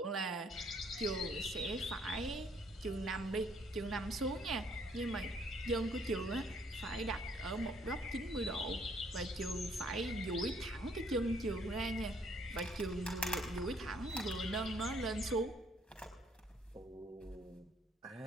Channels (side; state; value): both; normal; correlation 0.65